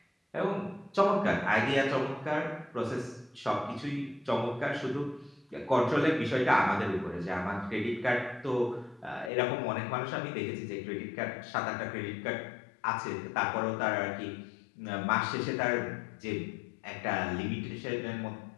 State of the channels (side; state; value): right; drops out; at 9.3 s